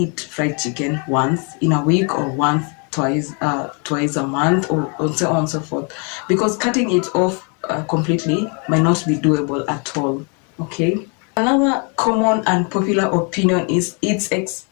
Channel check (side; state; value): right; quieter; 35.8 dB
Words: fried chicken once in a week or twice a month, or so on and so forth. Because cutting it off completely might not be doable at all, okay? Another common and popular opinion is it's